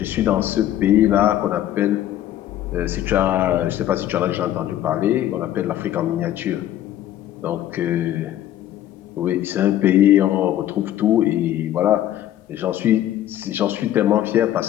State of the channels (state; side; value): quieter; right; 12.4 dB